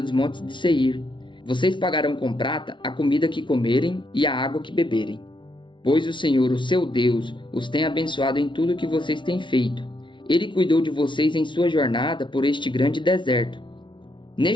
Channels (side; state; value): right; late; 0.24 ms